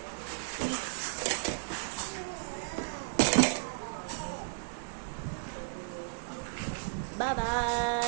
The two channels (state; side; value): silent; left; 55 dB below the other